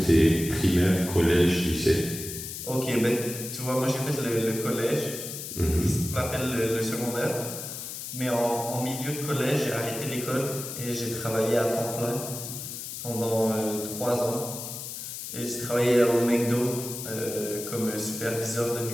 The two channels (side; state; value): left; noise; hiss, 8 dB below the sound